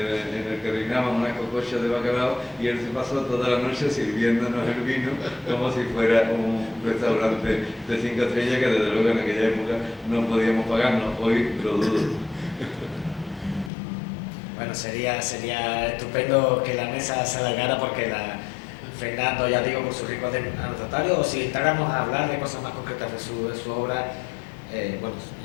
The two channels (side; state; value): right; drops out; at 13.7 s